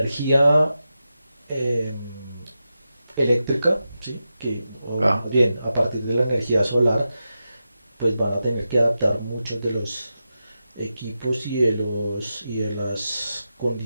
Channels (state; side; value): inverted; both; correlation -0.90